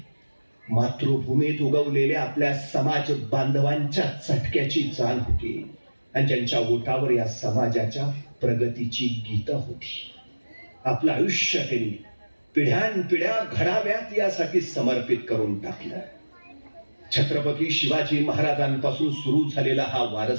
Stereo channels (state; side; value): inverted; both; correlation -1.00